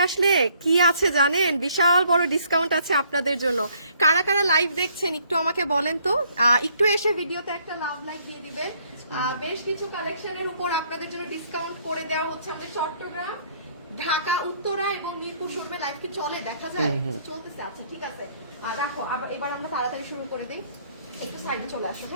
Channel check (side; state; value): both; inverted; correlation -0.65